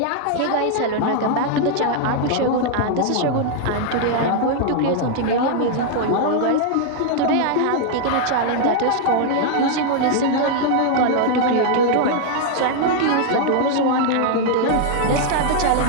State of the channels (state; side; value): different; both; correlation 0.00